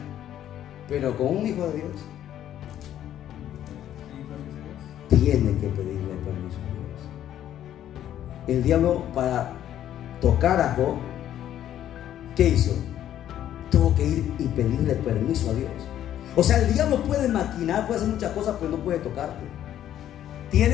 Pero con un hijo de Dios tiene que pedirle permiso a Dios. El diablo, para tocar a Job, ¿qué hizo? Tuvo que ir y pedirle permiso a Dios. O sea, el diablo puede maquinar, puede hacer muchas cosas, pero no puede tocarte.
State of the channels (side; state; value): right; quieter; 11.3 dB